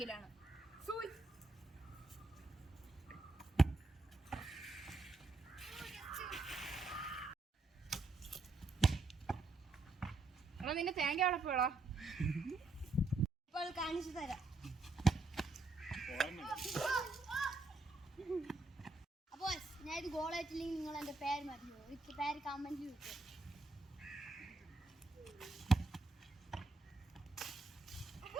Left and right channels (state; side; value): quieter; left; 3.3 dB